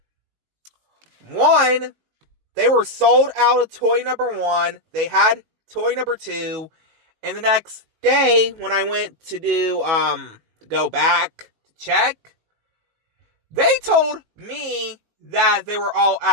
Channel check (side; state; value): left; late; 19 ms